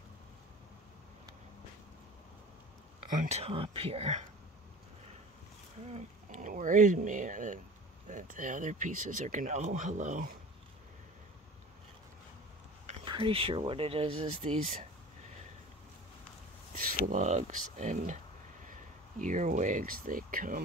on top here. It worries me that the other pieces are gonna, oh, hello. I'm pretty sure what it is these slugs and earwigs. They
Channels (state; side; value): normal; both; correlation 0.40